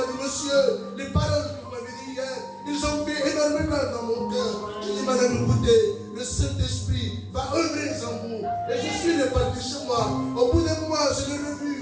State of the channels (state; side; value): identical; both; correlation 1.00